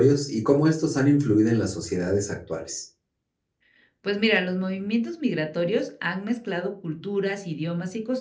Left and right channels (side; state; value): both; identical; correlation 1.00